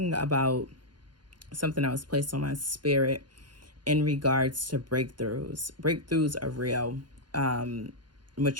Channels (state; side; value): late; left; 0.71 ms